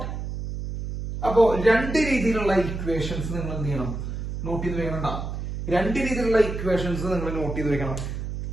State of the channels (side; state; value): right; noise; hum, 5 dB below the sound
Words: അപ്പോ രണ്ട് രീതിയിലുള്ള equations നിങ്ങൾ എന്ത് ചെയ്യണം? Not ചെയ്ത് വെക്കണം. രണ്ട് രീതിയിലുള്ള ഇക്വേഷൻസ് നിങ്ങൾ നോട്ട് ചെയ്ത് വെക്കണം.